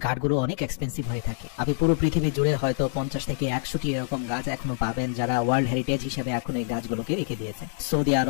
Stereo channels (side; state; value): right; silent; 61 dB below the other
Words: কাঠগুলো অনেক এক্সপেন্সিভ হয়ে থাকে। আপনি পুরো পৃথিবী জুড়ে হয়তো 50 থেকে 100টি এরকম গাছ এখনো পাবেন যারা ওয়ার্ল্ড হেরিটেজ হিসেবে এখন এই গাছগুলোকে রেখে দিয়েছে। সৌদি